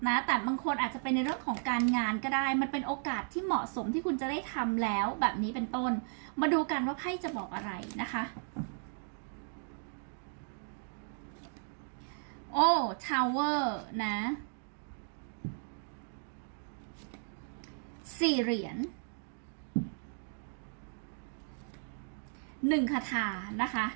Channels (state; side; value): silent; left; 54 dB below the other